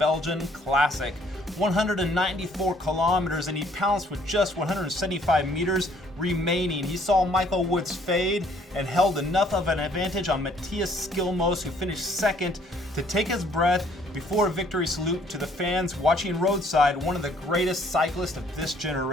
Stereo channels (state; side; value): normal; both; correlation 0.62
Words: Classic. 194 kilometers, and he pounced with just 175 meters remaining. He saw Michael Woods fade and held enough of an advantage on Matthias Skjelmose, who finished second, to take his breath before a victory salute to the fans watching roadside, one of the greatest cyclists of this